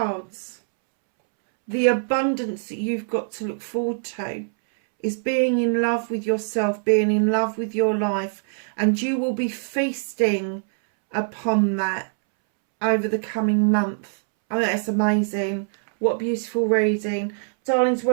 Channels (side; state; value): left; silent; 63 dB below the other